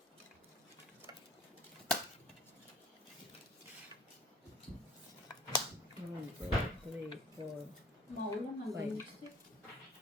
Maulang hanggang lipstick.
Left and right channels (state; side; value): normal; both; correlation 0.51